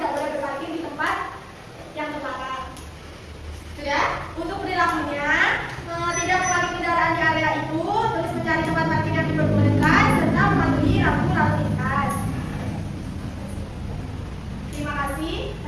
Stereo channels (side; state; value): both; identical; correlation 1.00